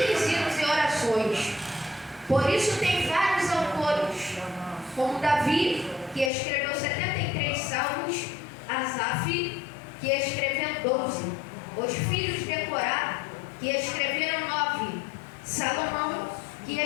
hinos e orações. Por isso tem vários autores, como Davi, que escreveu 73 salmos, Asaf, que escreveu 12, os filhos de Corá, que escreveram 9, Salomão, que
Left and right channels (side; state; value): right; drops out; at 6.3 s